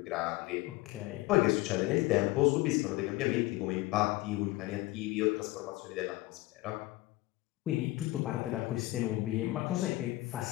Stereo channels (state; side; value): quieter; right; 19.4 dB